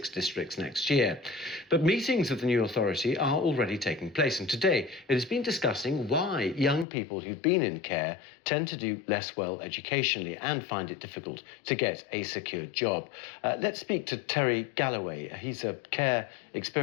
districts next year. But meetings of the new authority are already taking place, and today it has been discussing why young people who've been in care tend to do less well educationally and find it difficult to get a secure job. Let's speak to Terry Galloway. He's a care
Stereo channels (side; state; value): right; drops out; at 6.9 s